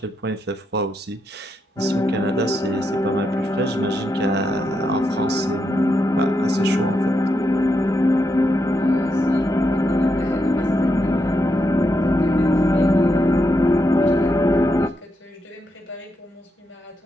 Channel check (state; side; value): normal; both; correlation 0.83